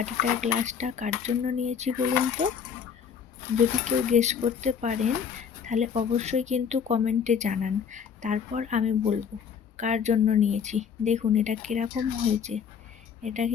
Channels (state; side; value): quieter; right; 7.1 dB